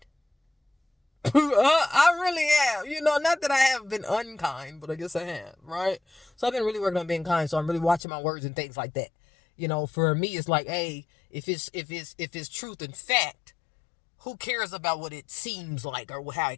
I really am. Not that I have been unkind, but I guess I have, right? So I've been really working on being kind. So I'm really watching my words and things like that. For me, it's like, hey, if it's truth and fact, who cares about what it seems like or how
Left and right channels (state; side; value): drops out; right; at 8.0 s